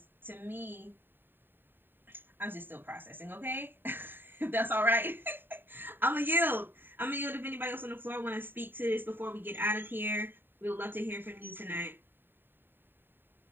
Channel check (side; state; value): left; late; 0.096 ms